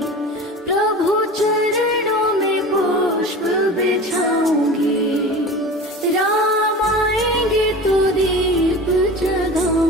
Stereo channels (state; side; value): normal; both; correlation 0.34